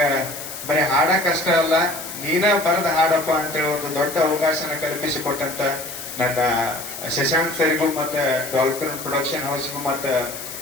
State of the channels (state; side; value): noise; left; hiss, 10 dB below the sound